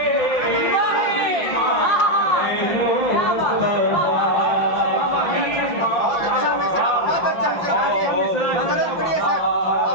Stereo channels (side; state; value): right; late; 5.9 ms